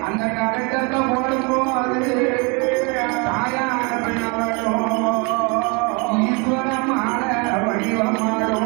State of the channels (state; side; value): quieter; left; 31.2 dB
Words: அந்த கடுக்கத்தை போடும்போது